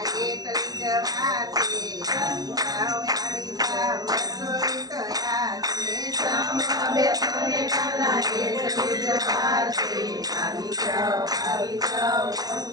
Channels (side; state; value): left; late; 0.19 ms